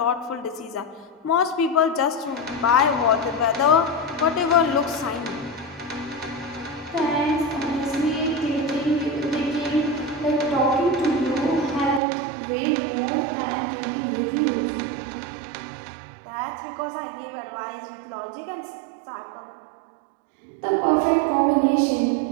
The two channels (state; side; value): drops out; left; at 12.0 s